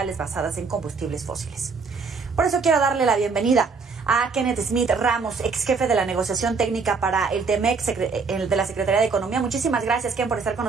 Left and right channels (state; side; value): quieter; left; 4.8 dB